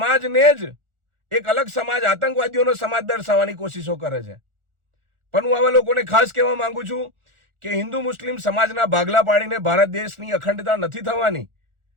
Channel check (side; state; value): left; late; 1.4 ms